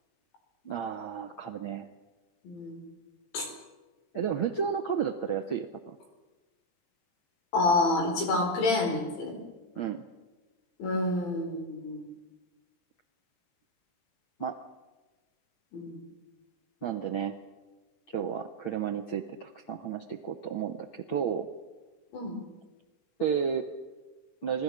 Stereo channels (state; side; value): late; right; 18 ms